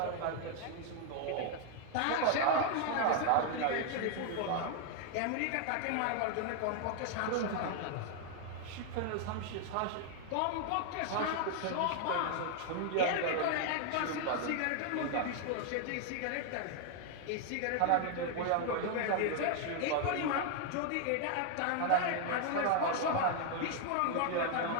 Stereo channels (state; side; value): different; both; correlation 0.00